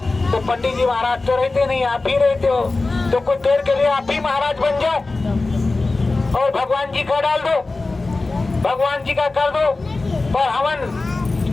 तो पंडित जी महाराज तो रहते नहीं, आप ही रहते हो, तो कुछ देर के लिए आप ही महाराज बन जाओ और भगवान जी का डाल दो, भगवान जी का कर दो। पर हवन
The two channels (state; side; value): quieter; right; 3.4 dB